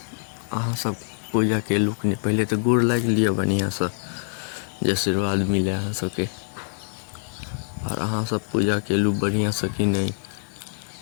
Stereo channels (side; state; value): right; silent; digital silence